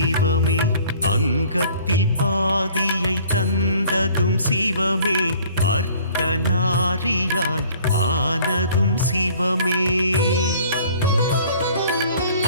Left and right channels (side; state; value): both; inverted; correlation -0.54